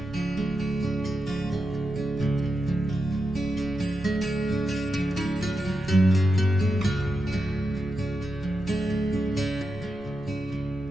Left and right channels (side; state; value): both; normal; correlation 0.88